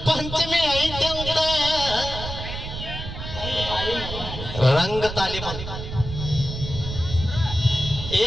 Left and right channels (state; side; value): noise; right; rumble, 7 dB below the sound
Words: ಪಂಚಮಿ ಐತೆ ಅಂತ ರಂಗ ತಾಲೀಮ